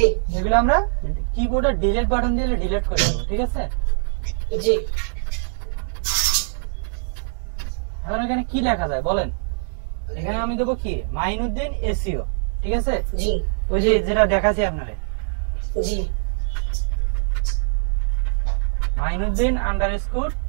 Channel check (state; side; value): silent; left; digital silence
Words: এগুলো আমরা কিবোর্ডে ডিলিট বাটন দিয়ে ডিলিট করে দেব, ঠিক আছে? জি। এখন এখানে কি লেখা যায় বলেন? এখানে আমি দেবো কি, মাইনুদ্দিন এসইও, ঠিক আছে? জি। ওই যে যেটা দেখাচ্ছি আপনারে, জি। মাইনুদ্দিন আন্ডারস্কোর